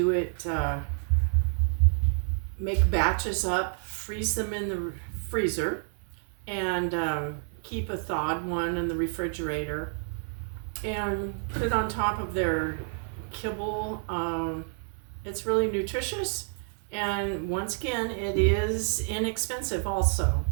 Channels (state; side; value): silent; left; 59 dB below the other